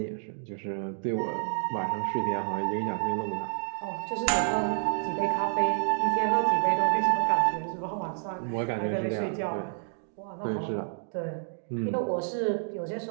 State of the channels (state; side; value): silent; left; 58 dB below the other